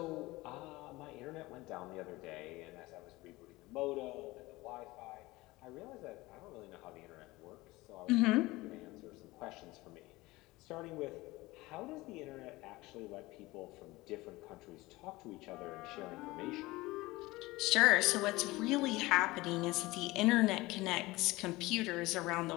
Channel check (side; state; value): right; quieter; 20.4 dB